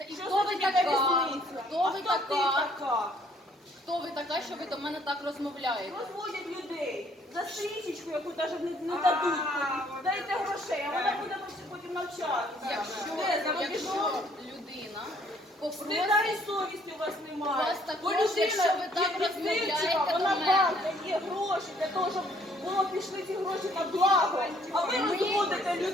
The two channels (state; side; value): normal; both; correlation 0.63